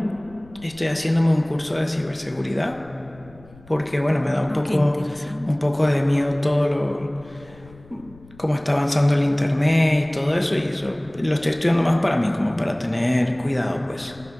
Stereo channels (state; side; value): noise; left; rumble, 24 dB below the sound